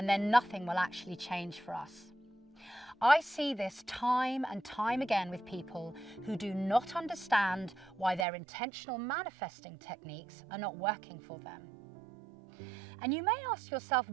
then nothing will actually change for us. I see this time and time again with people who do not understand why their intentional manifesting techniques are not working for them. And you may ask yourself,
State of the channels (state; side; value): drops out; left; at 8.2 s